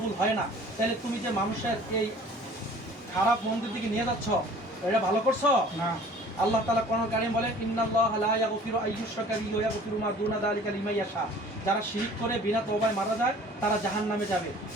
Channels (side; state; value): both; normal; correlation 0.49